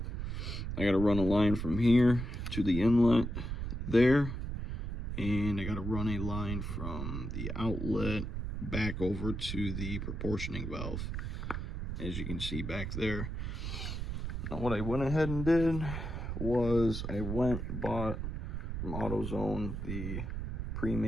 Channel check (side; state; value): right; noise; rumble, 4 dB below the sound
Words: I got to run a line from here to the inlet there. And I got to run a line from the outlet back over to the proportioning valve, as you can see back there. Now what I went ahead and did was I bought from AutoZone the